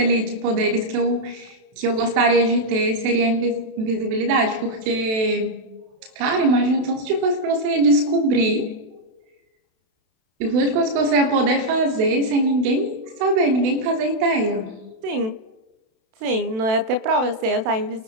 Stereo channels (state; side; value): late; left; 32 ms